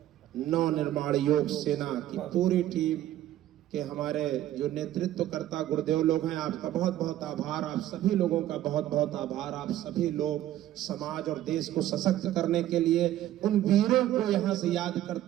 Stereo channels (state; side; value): quieter; left; 13.2 dB